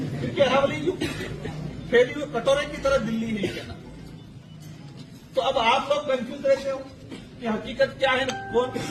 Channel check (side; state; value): both; identical; correlation 1.00